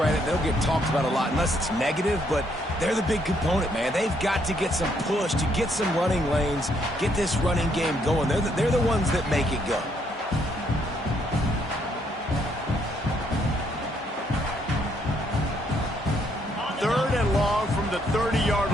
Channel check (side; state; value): both; normal; correlation 0.72